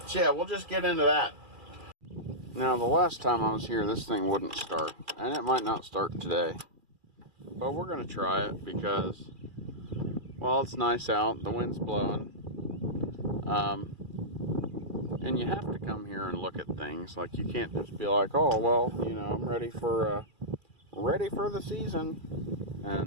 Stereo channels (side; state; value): left; late; 2.4 ms